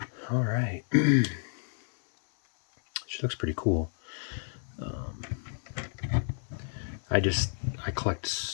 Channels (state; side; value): silent; right; 57 dB below the other